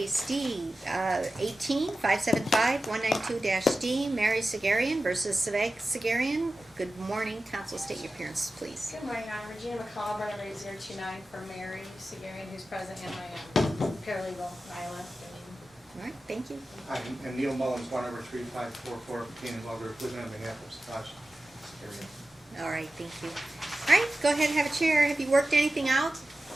D, 18-575-192-D, Mary Sagherian versus Sagherian. Good morning, counsel, state your appearance, please. Good morning, I'm Regina McCall, Brenda 029 for Mary Sagherian, who's present, and my paralegal, Nyla. All right, thank you. Hi, and Neil Mullins, 1-3544, Canaan Welders, living on behalf of Sagherian. All right, thank you. All right, go ahead and have a chair. Have you worked anything out?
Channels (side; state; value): both; normal; correlation 0.94